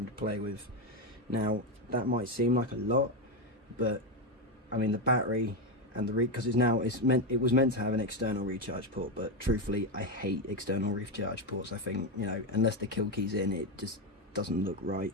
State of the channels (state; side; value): normal; both; correlation 0.10